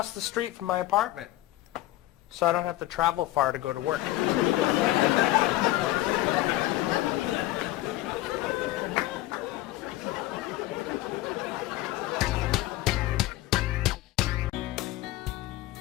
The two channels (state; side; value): quieter; right; 16.6 dB